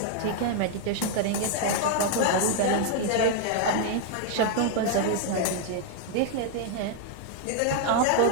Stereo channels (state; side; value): different; both; correlation 0.00